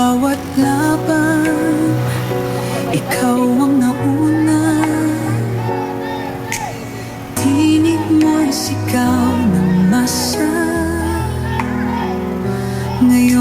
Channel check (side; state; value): both; identical; correlation 1.00